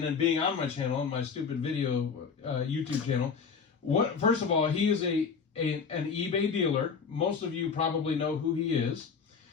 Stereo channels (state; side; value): quieter; right; 5.8 dB